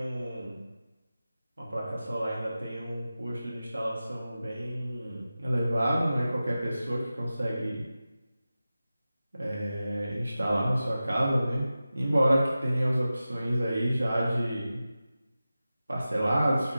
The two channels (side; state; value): both; inverted; correlation -0.94